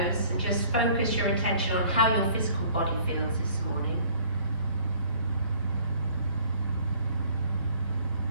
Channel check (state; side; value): inverted; both; correlation -0.55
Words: and just focus your attention on how your physical body feels this morning.